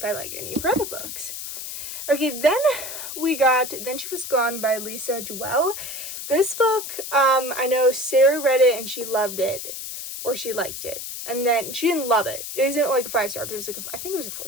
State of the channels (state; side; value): noise; left; hiss, 8 dB below the sound